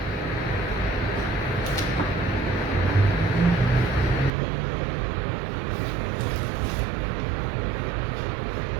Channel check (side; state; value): left; drops out; at 4.3 s